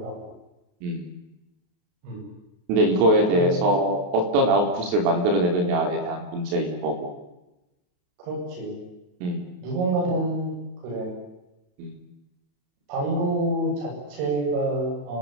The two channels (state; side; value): late; left; 28 ms